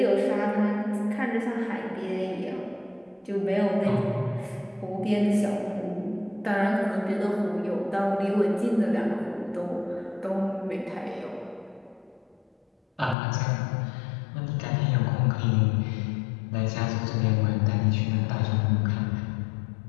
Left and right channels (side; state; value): right; drops out; at 13.2 s